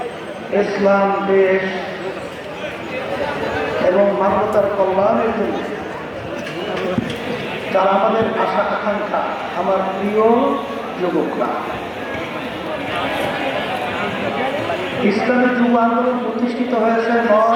ইসলাম দেশ এবং মানবতার কল্যাণের জন্য যারা আমাদের আশা আকাঙ্ক্ষা, আমার প্রিয় যুবকরা, ইসলামী যুব আন্দোলন প্রতিষ্ঠিত হয়েছে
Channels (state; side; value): identical; both; correlation 1.00